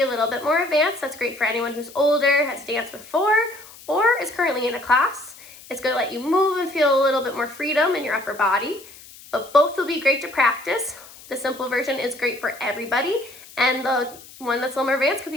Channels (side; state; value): left; noise; hiss, 20 dB below the sound